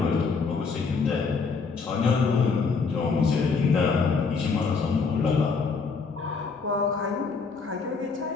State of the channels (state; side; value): quieter; right; 4.9 dB